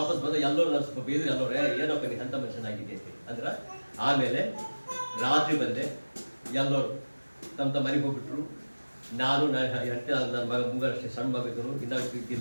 ಎಲ್ಲರೂ ನಾನು ಸ್ವಲ್ಪ ಬೇದ್ರೆ ಎಲ್ಲರೂ ಏನಪ್ಪ ನೀನು ಎಂಥ ಮನುಷ್ಯನಾಗಿದೆ ಅಂದ್ರೆ ಆಮೇಲೆ ರಾತ್ರಿ ಬಂದೆ. ಎಲ್ಲರೂ ತಮ್ಮ ಮನೆಗೆ ಹೋಗ್ಬಿಟ್ರು. ನಾನು ನನ್ನ ಮಗ ಮುಂಗಷ್ಟೇ ಸಣ್ಣ ಮಗ ಇದ್ದರು, ಇನ್ನಾಗ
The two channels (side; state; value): both; inverted; correlation -1.00